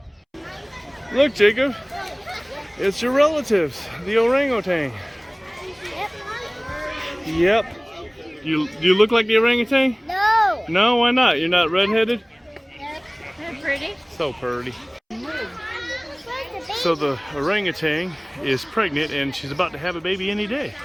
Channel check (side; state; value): both; identical; correlation 1.00